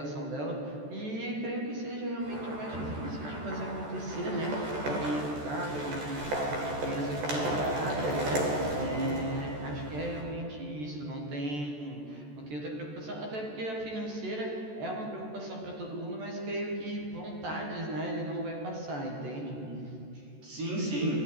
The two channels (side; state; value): left; late; 14 ms